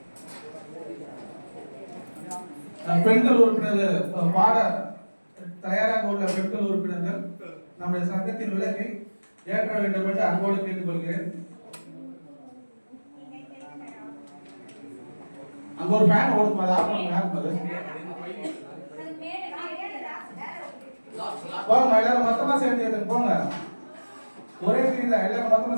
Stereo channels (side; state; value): both; inverted; correlation -1.00